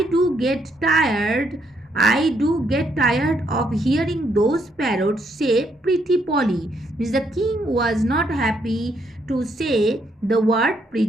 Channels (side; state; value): both; normal; correlation 0.73